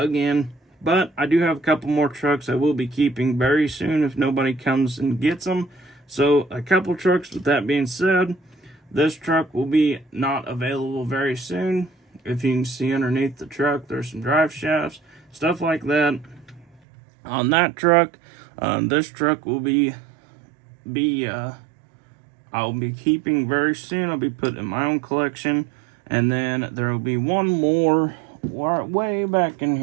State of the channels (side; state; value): left; drops out; at 16.8 s